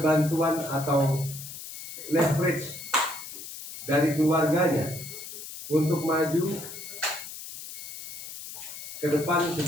bantuan atau leverage dari keluarganya untuk maju ke depan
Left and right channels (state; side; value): noise; left; hiss, 11 dB below the sound